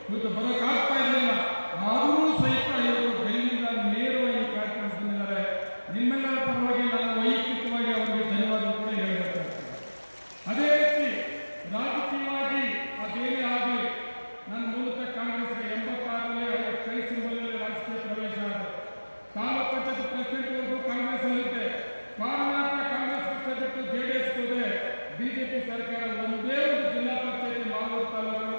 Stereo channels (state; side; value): inverted; both; correlation -1.00